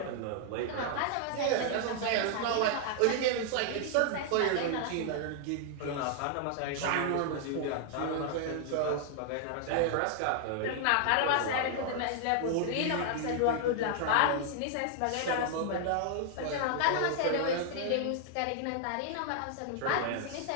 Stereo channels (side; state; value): both; different; correlation 0.00